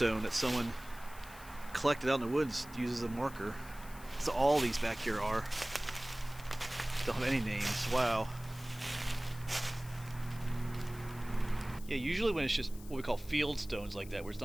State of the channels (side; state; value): left; noise; hiss, 19 dB below the sound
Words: that someone collected out in the woods, uses a marker. So all these back here are. Don't have any names. Wow. Yeah, usually when it's just what we call field stones like that, where it's